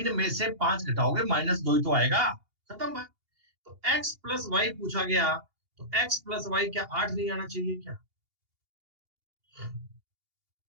में से 5 घटाओगे -2 ही तो आएगा। खत्म बात। तो x प्लस वाई पूछा गया, तो x प्लस वाई क्या 8 नहीं आना चाहिए क्या?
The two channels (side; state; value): left; late; 2.8 ms